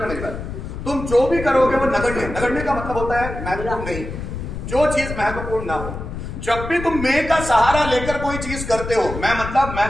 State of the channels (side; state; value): left; noise; rumble, 7 dB below the sound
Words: मेरी बात, तुम जो भी करोगे वो नगण्य, नगण्य का मतलब होता है महत्वपूर्ण नहीं, जो चीज महत्वपूर्ण ना हो। जब भी तुम मैं का सहारा लेकर कोई चीज करते हो, मैं मतलब